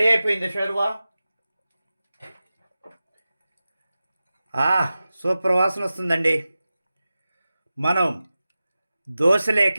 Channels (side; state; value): both; inverted; correlation -0.95